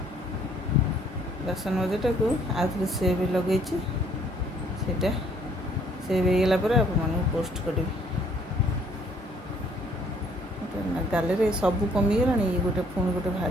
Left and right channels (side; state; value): both; normal; correlation 0.63